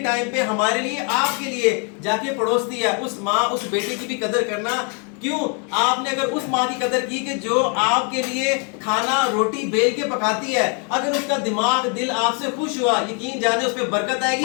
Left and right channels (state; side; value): quieter; right; 37.9 dB